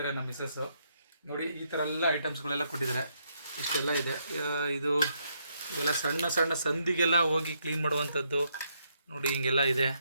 ನಮ್ಮ ಮಿಸ್ಸಸ್ಸು. ನೋಡಿ, ಈ ಥರ ಎಲ್ಲ ಐಟಮ್ಸ್ಗಳೆಲ್ಲ ಕೊಟ್ಟಿದ್ದಾರೆ. ಇಷ್ಟೆಲ್ಲ ಇದೆ. ಇದು ಇವೆಲ್ಲ ಸಣ್ಣ ಸಣ್ಣ ಸಂದಿಗೆಲ್ಲ ಹೋಗಿ ಕ್ಲೀನ್ ಮಾಡುವಂಥದ್ದು. ನೋಡಿ, ಹಿಂಗೆಲ್ಲ ಇದೆ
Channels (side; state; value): both; inverted; correlation -0.76